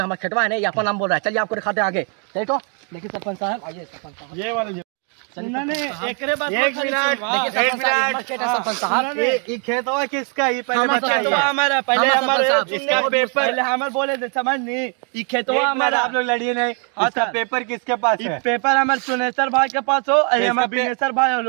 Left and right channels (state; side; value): quieter; left; 39.5 dB